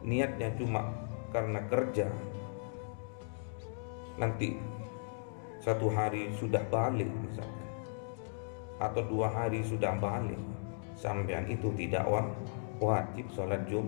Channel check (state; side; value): silent; right; digital silence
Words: niatnya cuma karena kerja, nanti 1 hari sudah balik misalkan, atau 2 hari sudah balik, sampean itu tidak wajib sholat